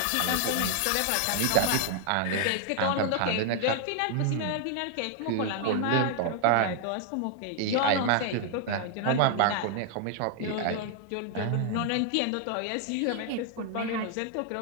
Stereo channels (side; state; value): both; different; correlation 0.00